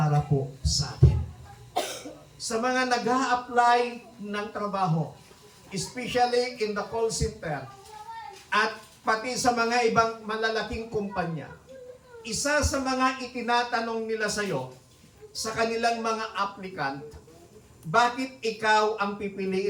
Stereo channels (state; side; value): identical; both; correlation 1.00